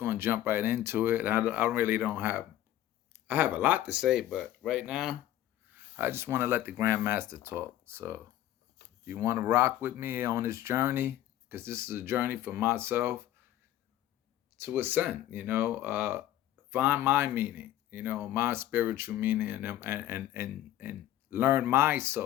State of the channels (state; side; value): quieter; right; 13.4 dB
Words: to jump right into it. I really don't have, I have a lot to say, but right now, I just want to let the Grandmaster talk. So, if you want to rock with me on this journey, because this is a journey for myself to ascend, find my meaning, my spiritual meaning, and learn my